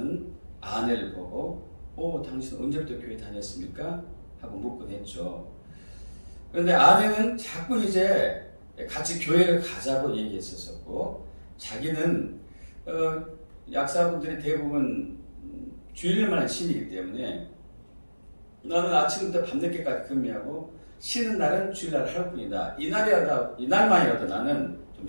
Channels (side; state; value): both; inverted; correlation -1.00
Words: 아내를 보고 당신 언제부터 교회 다녔습니까? 하고 묻곤 했죠. 그런데 아내는 자꾸 이제 같이 교회를 가자고 얘기했었고, 자기는 약사분들이 대부분 주일날만 신이기 때문에 나는 아침부터 밤늦게까지 근무하고 쉬는 날은 주일날 하루뿐이다. 이날만이라도 나는 좀